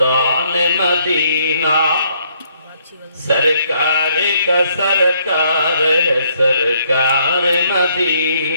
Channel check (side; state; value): both; inverted; correlation -0.69